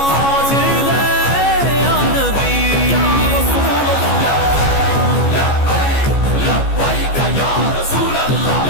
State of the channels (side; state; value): right; late; 14 ms